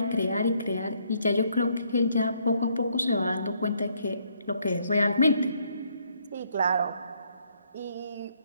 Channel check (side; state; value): both; inverted; correlation -0.70